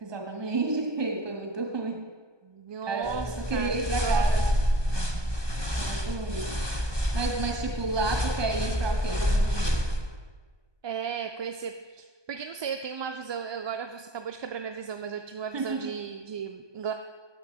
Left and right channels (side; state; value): left; late; 1.2 ms